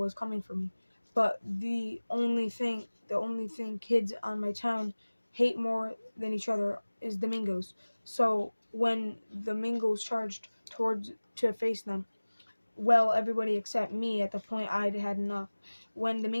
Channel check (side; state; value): both; inverted; correlation -1.00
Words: coming for me. But the only thing kids on my town hate more than each other is the Mingos. So when the Mingos charged towards to face them, well, everybody except me at the point I'd had enough. When the